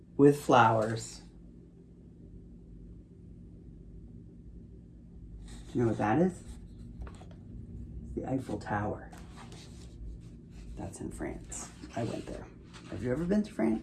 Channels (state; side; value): identical; both; correlation 1.00